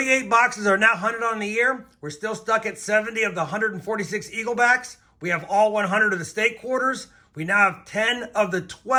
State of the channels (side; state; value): both; identical; correlation 1.00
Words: boxes are now hunted on the year. We're still stuck at 70 of the 146 Eaglebacks. We have all 100 of the state quarters. We now have 10 of the